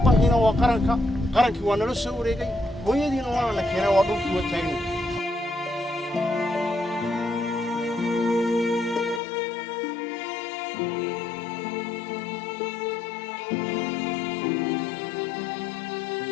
waa qarankii waa nala soo wareegay hooyadiina waa la keenay waa dhulkii waa taagna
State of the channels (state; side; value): drops out; right; at 9.2 s